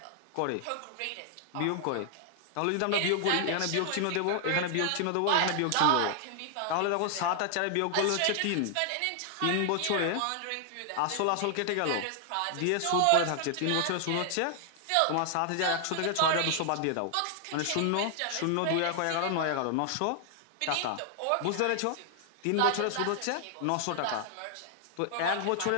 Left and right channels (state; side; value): different; both; correlation 0.00